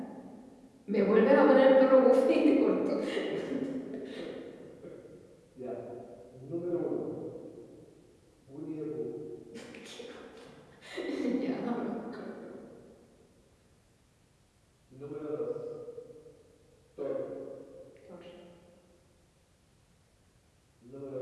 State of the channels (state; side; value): identical; both; correlation 1.00